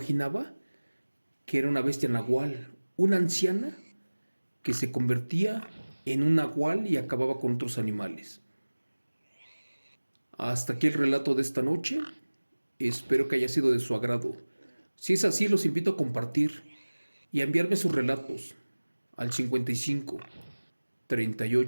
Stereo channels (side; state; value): both; inverted; correlation -1.00